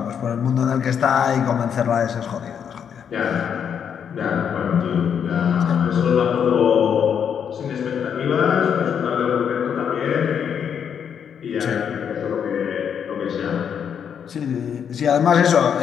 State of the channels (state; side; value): quieter; right; 7.8 dB